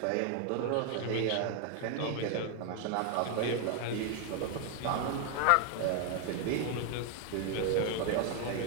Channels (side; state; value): both; different; correlation 0.00